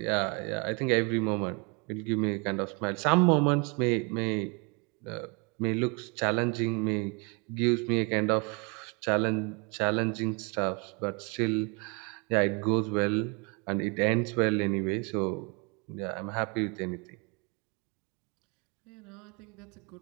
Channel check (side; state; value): left; quieter; 32.0 dB